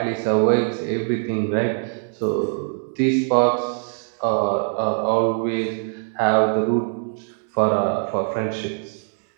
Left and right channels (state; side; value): silent; left; 64 dB below the other